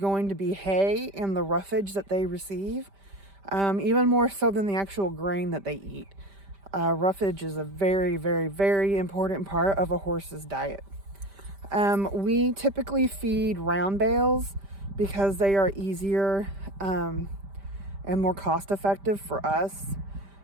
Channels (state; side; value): late; left; 5.1 ms